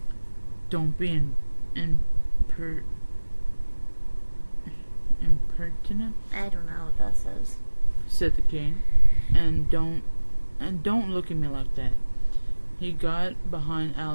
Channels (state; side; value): inverted; both; correlation -1.00